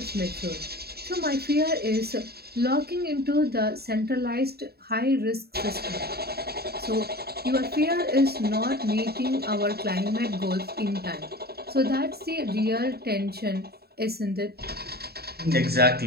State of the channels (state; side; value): late; left; 0.46 ms